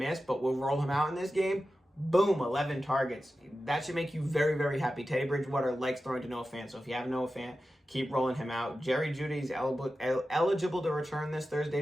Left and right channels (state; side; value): normal; both; correlation 0.93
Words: but we'll roll him out in this game. Boom, 11 targets. That should make you very, very happy. Teddy Bridgewater likes throwing to Noah Fant, so if you have Noah Fant, keep rolling him out. Jerry Jeudy's eligible to return this